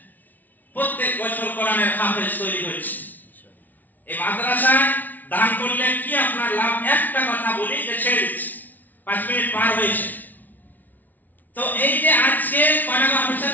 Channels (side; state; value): right; late; 0.081 ms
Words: প্রত্যেক বছর কোরআনের হাফেজ তৈরি হচ্ছে। এই মাদ্রাসায় দান করলে কি আপনার লাভ, একটা কথা বলি যে ছেড়ে দিচ্ছি, 5 মিনিট পার হয়েছে। তো এই যে আজকে কয়টা হাফেজ,